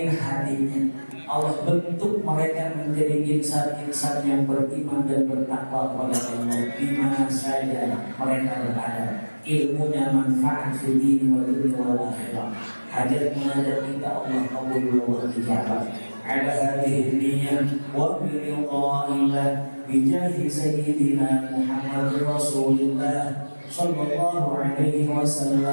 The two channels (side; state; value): both; inverted; correlation -1.00